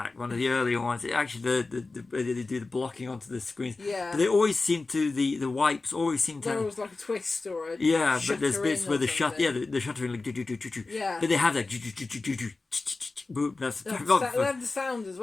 one of the earlier ones, it actually they do the blocking onto the screens. Yeah. But they always seem to the wipes always seem to. There was like a twist or a. Yeah, but there's bits where the shuttering like Yeah. But they have that. That's they have the sound as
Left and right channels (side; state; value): right; quieter; 3.6 dB